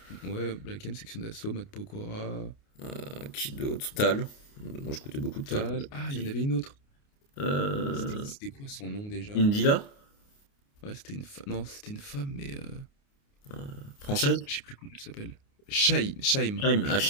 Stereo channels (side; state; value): right; late; 29 ms